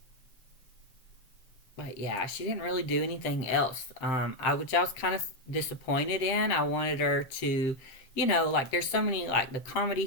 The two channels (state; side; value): late; right; 7.6 ms